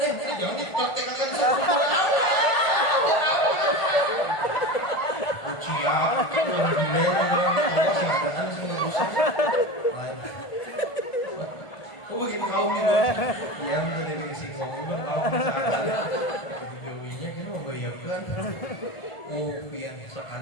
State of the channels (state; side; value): late; right; 1.4 ms